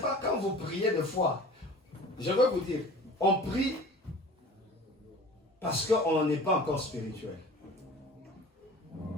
quand vous priez de foi. Je veux vous dire, on prie parce qu'on n'est pas encore spirituel.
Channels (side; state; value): both; normal; correlation 0.42